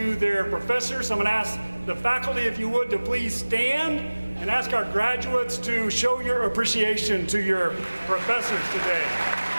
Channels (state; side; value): inverted; both; correlation -1.00